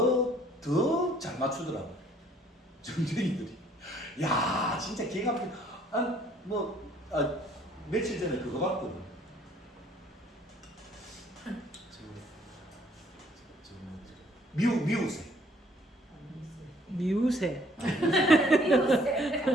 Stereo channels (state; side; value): normal; both; correlation 0.61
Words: 잘 맞추더라고. 점쟁이들이. 야, 진짜 기가 막히게. 며칠 전에 그거 봤거든. 미우새. 미우새.